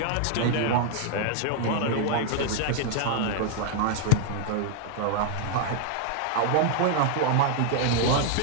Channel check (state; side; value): different; both; correlation 0.00